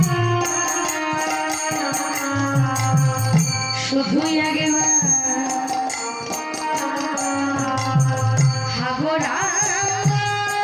শুধুই আগে হাগরা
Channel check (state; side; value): identical; both; correlation 1.00